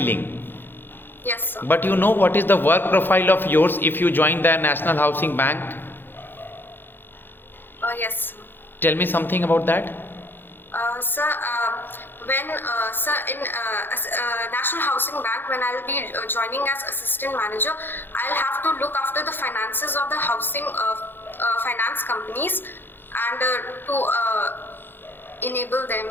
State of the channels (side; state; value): right; late; 0.099 ms